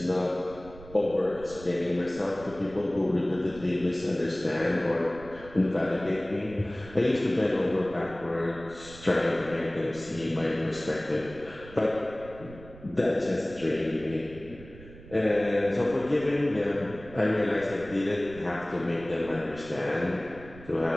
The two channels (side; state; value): right; noise; rumble, 18 dB below the sound